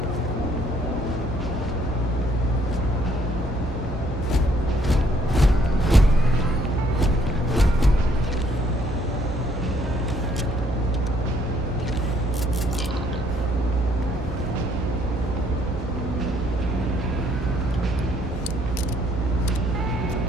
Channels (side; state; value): both; normal; correlation 0.66